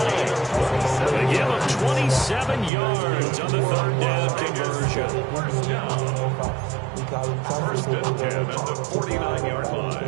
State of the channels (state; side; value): drops out; left; at 2.7 s